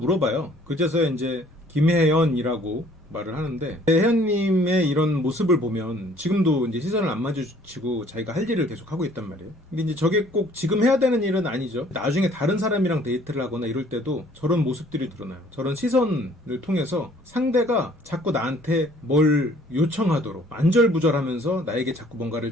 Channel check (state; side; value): normal; both; correlation 0.57